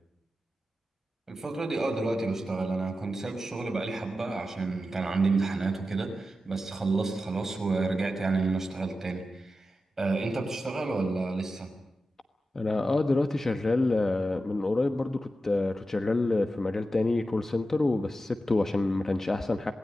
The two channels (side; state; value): both; normal; correlation 0.91